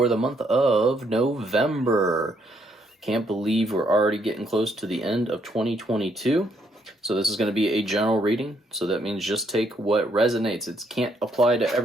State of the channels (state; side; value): normal; both; correlation 0.71